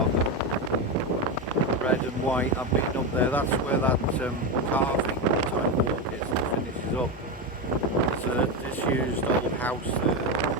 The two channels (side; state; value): both; normal; correlation 0.13